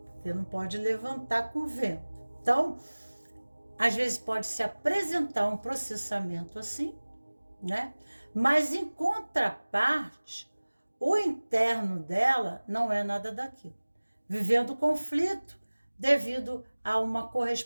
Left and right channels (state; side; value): inverted; both; correlation -1.00